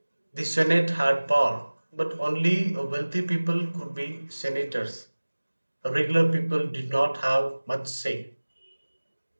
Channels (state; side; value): inverted; both; correlation -1.00